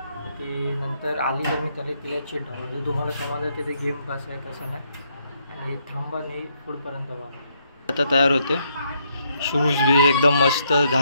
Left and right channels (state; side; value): inverted; both; correlation -0.74